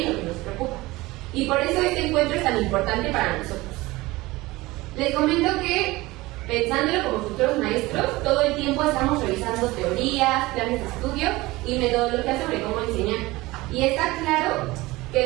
lo que nos preocupa. Y por eso este encuentro es tan importante para nosotros. Les comento que, pensándolo como futuros maestros, todo el tiempo estamos revisando teorías, planes de estudio y metodologías sobre cómo enseñar. Y está claro que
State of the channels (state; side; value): quieter; left; 20.3 dB